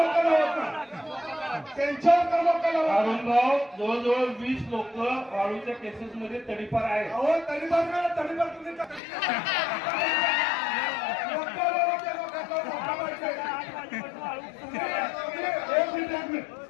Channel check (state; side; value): drops out; right; at 9.0 s